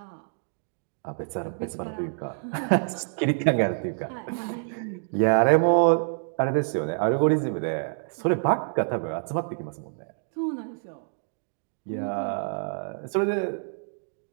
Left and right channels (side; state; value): left; silent; digital silence